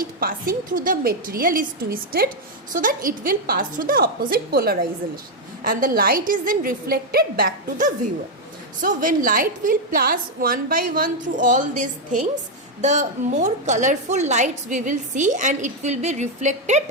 passing through the material is twisted so that it will pass through the opposite polarization, and the light is then reflected back to the viewer. So when light will pass one by one through all these things, the more colorful lights we will see, and it will be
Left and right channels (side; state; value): both; normal; correlation 0.02